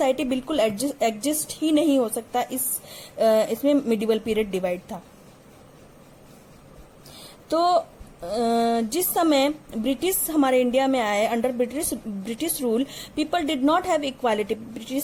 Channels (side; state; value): both; identical; correlation 1.00